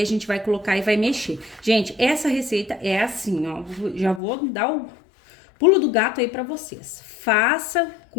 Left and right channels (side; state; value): right; drops out; at 4.2 s